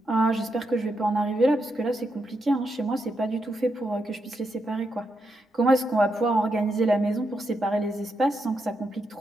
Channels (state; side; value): normal; both; correlation 0.83